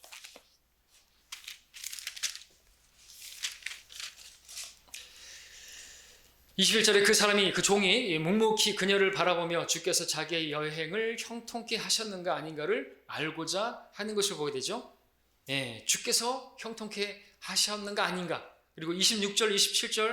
21절에 그 사람이, 그 종이 묵묵히 그녀를 바라보며 주께서 자기의 여행을 형통케 하셨는가 아닌가를 알고자 하는 것을 보게 되죠. 주께서 형통케 하셨는가 아닌가. 그리고 26절,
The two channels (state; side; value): identical; both; correlation 1.00